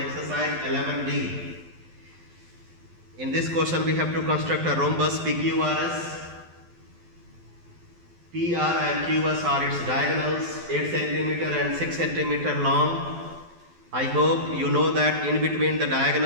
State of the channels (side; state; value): left; late; 12 ms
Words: 11D. In this question we have to construct a rhombus PQRS. PR and QS are its diagonals, 8 centimeter and 6 centimeter long. I hope you know that in between the